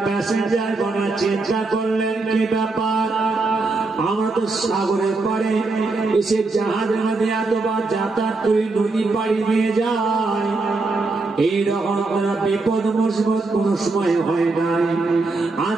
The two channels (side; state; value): left; quieter; 3.6 dB